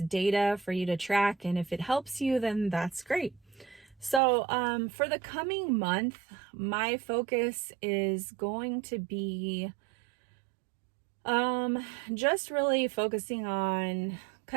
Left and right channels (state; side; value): drops out; left; at 4.2 s